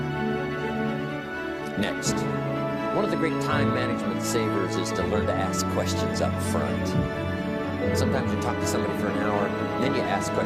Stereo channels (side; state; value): both; identical; correlation 1.00